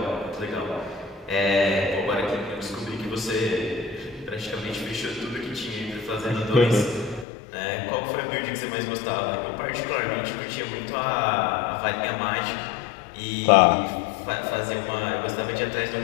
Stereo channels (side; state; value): right; drops out; at 7.2 s